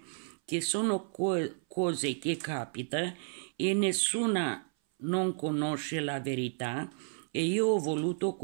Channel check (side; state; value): left; silent; 56 dB below the other